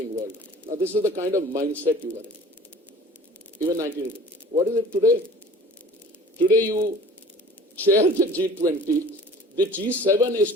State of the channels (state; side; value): normal; both; correlation 0.45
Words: world. Now, this is the kind of mindset you were in. Even 1980. What is it today? Today you chair the G20, the G7 is